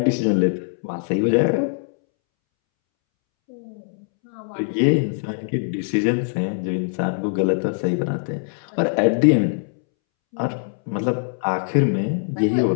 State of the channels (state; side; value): silent; right; 64 dB below the other